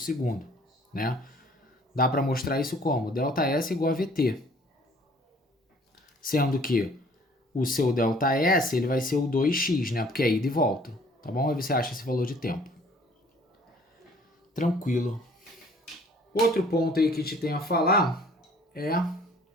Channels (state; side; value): normal; both; correlation 0.55